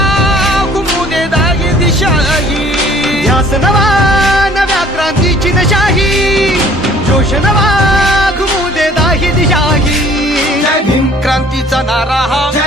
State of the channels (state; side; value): normal; both; correlation 0.55